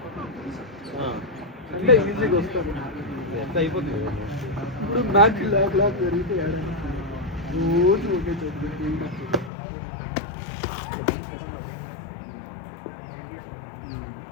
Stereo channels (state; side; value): drops out; right; at 9.5 s